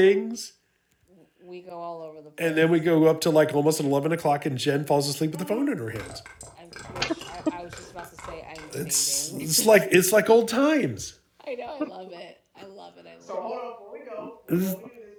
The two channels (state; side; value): identical; both; correlation 1.00